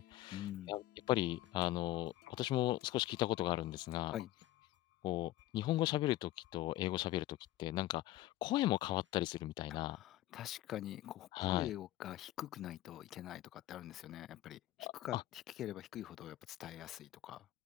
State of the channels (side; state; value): right; quieter; 15.3 dB